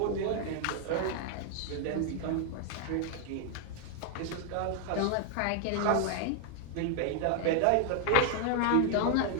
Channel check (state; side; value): different; both; correlation 0.00